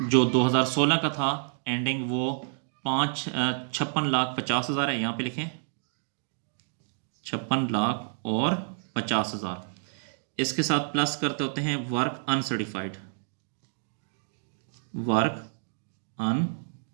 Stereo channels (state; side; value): silent; left; digital silence